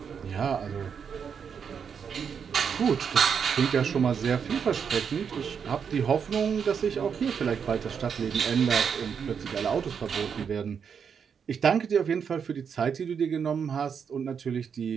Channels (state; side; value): quieter; left; 6.9 dB